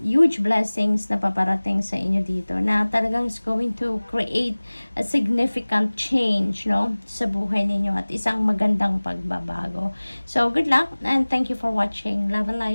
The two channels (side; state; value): both; inverted; correlation -1.00